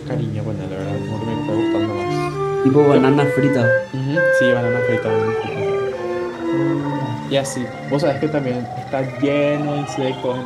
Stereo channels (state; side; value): identical; both; correlation 1.00